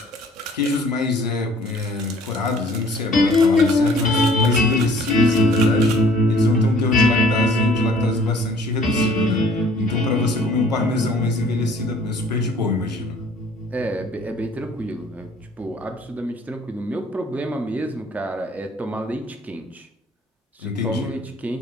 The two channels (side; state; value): both; normal; correlation 0.55